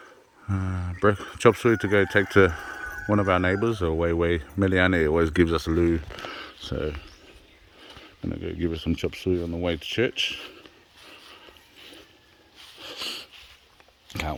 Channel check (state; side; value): identical; both; correlation 1.00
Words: Chop suey to go take to one of our neighbours, or Way Meliane always gives us a loo. So I'm gonna go give her some chop suey on the way to church. can't